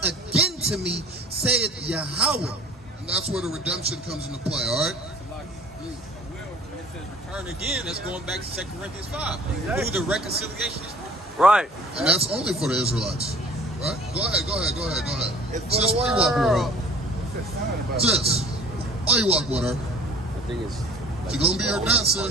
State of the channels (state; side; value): normal; both; correlation 0.48